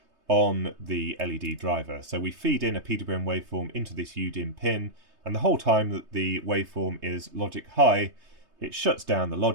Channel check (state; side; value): late; left; 3.3 ms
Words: on the LED driver. So we feed in a PWM waveform into this UDIM pin, and the whole time that the waveform is logic high, it shuts down the